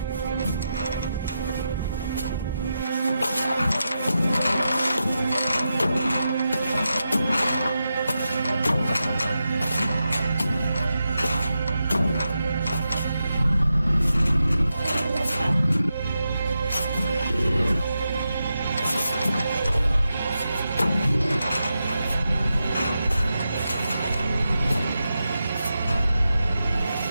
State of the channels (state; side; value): inverted; both; correlation -0.89